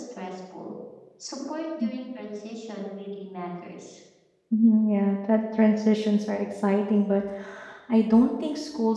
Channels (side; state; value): both; identical; correlation 1.00